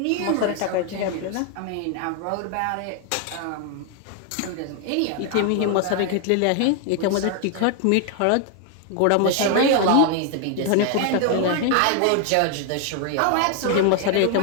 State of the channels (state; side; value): different; both; correlation 0.00